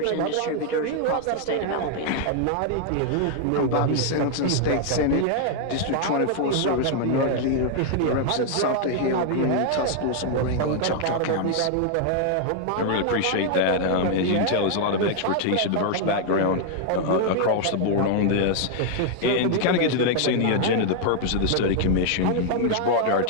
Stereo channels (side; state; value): both; different; correlation 0.00